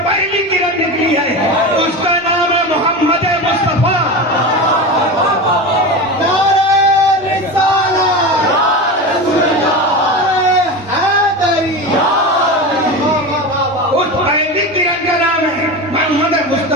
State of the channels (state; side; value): normal; both; correlation 0.25